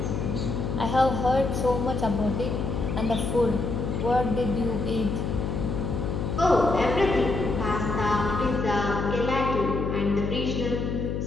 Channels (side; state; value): left; noise; hum, 2 dB below the sound